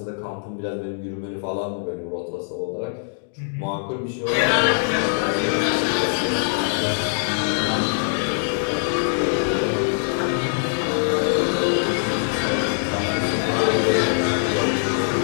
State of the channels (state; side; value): silent; right; digital silence